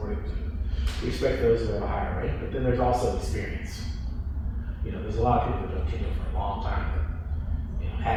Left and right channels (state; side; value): identical; both; correlation 1.00